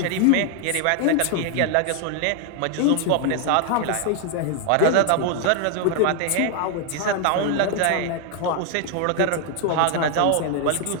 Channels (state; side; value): different; both; correlation 0.00